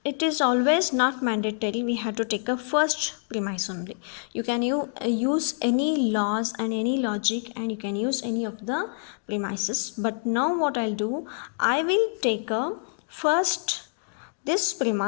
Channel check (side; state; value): right; silent; digital silence